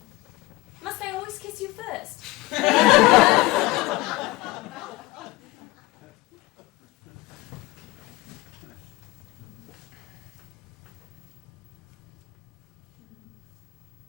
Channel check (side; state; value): right; quieter; 20.6 dB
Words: must I always kiss you first?